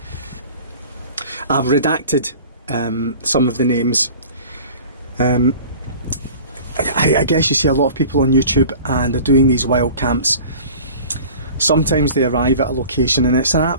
I've redacted some of the names. I guess you see a lot of people on YouTube and they're doing these wild camps. Sometimes they arrive at a location and it's an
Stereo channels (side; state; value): both; inverted; correlation -0.42